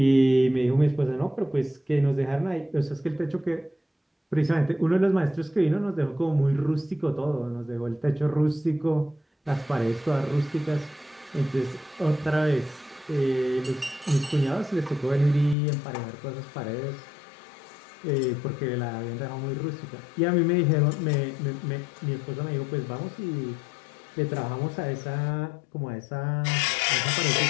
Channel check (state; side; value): drops out; right; at 15.6 s